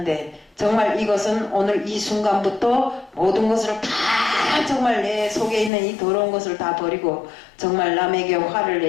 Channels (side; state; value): right; drops out; at 5.7 s